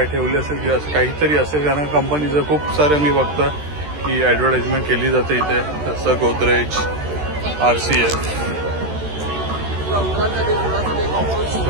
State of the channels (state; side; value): late; left; 13 ms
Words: ठेवली असेल किंवा असं काहीतरी असेल. कारण कंपनीचं खूप सारं मी बघतोय की ॲडव्हर्टाइजमेंट केली जाते इथे. जसं गोदरेज, RCF,